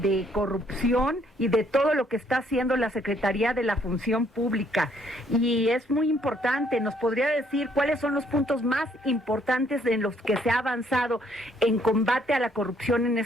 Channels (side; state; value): both; normal; correlation 0.67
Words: de corrupción y de todo lo que está haciendo la Secretaría de la Función Pública. Y es muy importante, ¿nos podría decir cuáles son los puntos más importantes en los que se ha avanzado en combate a la corrupción en